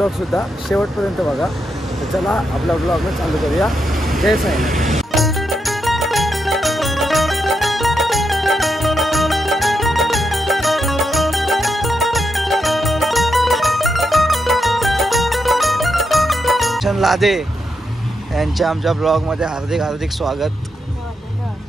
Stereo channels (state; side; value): normal; both; correlation 0.83